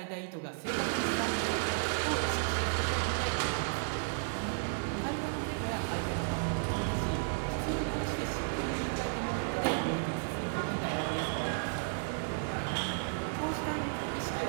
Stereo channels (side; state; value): left; silent; 55 dB below the other